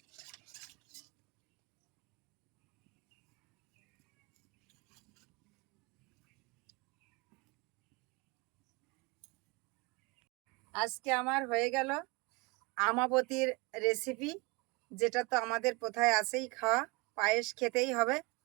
আজকে আমার হয়ে গেল আমাবতীর রেসিপি, যেটা তো আমাদের কোথায় আছেই খাওয়া, পায়েস খেতেই হবে।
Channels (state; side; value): quieter; left; 26.0 dB